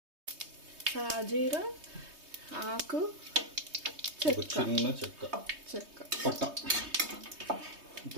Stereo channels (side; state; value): left; late; 3.2 ms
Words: సాజీరా, ఆకు, చిన్న చెక్క చెక్క, పట్ట.